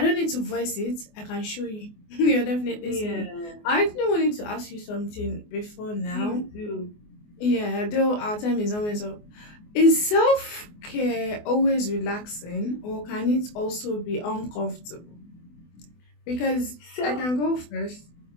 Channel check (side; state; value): right; late; 24 ms